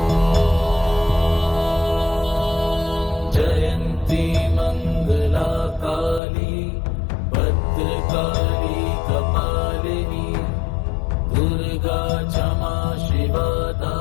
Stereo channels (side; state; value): right; drops out; at 6.2 s